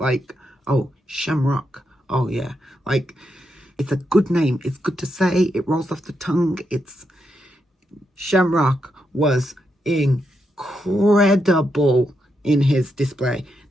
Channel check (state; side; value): normal; both; correlation 0.83